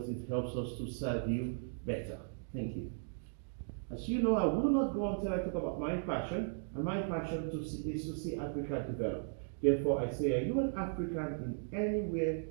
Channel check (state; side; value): silent; left; digital silence